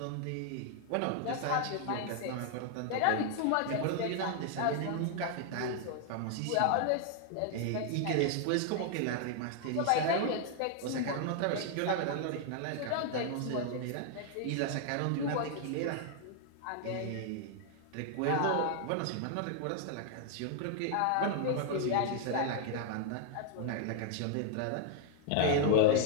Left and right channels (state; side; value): different; both; correlation 0.00